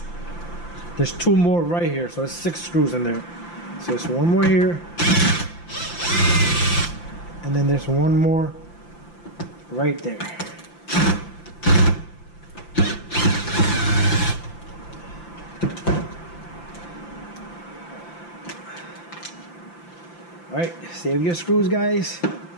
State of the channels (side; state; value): right; late; 5.8 ms